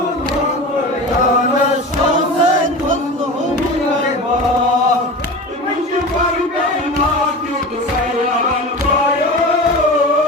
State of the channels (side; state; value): both; normal; correlation 0.30